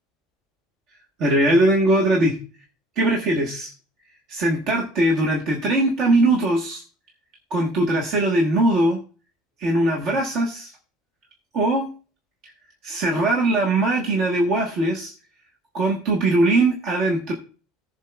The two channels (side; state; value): both; normal; correlation 0.54